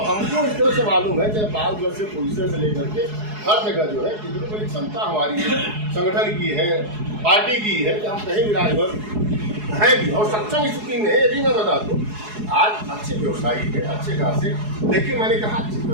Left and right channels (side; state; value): left; late; 4.7 ms